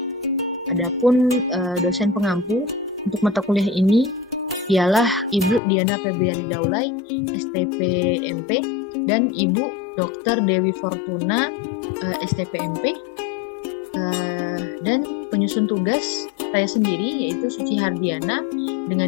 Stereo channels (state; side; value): drops out; right; at 5.6 s